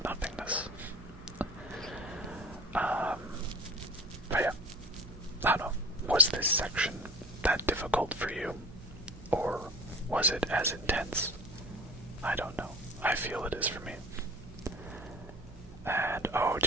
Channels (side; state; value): right; noise; hum, 21 dB below the sound